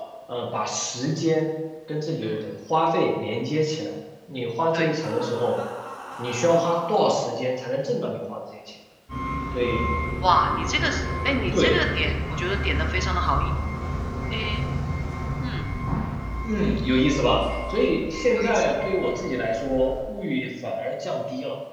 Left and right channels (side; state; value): both; identical; correlation 1.00